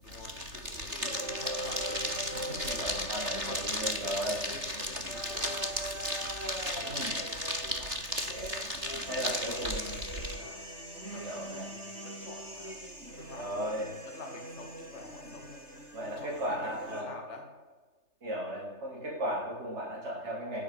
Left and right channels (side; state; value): left; late; 3.3 ms